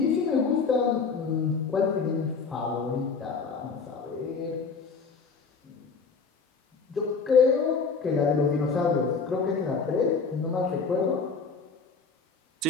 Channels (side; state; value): right; quieter; 4.9 dB